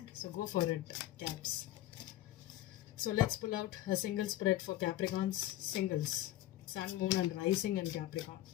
so go for it, Caps. So let's pull out a single spread for Capricorns. Singles, Sun, Moon and Rising in Capricorn.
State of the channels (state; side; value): quieter; right; 14.3 dB